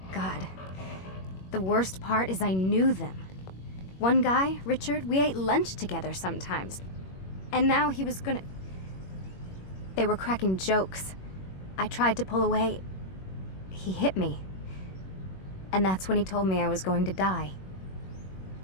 God. The worst part is I knew them. One guy, Richard, we ate lunch together sometimes. And now he was gonna... They were cracking jokes. I tried to pull away. He hit me. And that's when he told me I was going to die.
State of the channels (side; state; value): right; late; 21 ms